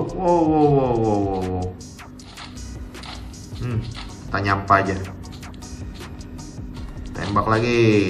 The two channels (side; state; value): both; identical; correlation 1.00